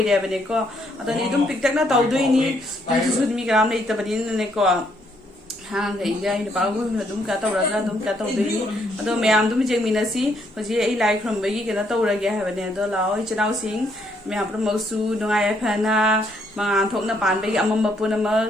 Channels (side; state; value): both; normal; correlation 0.72